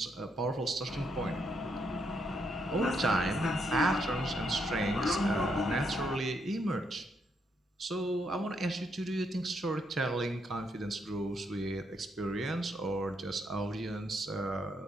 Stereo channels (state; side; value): normal; both; correlation 0.77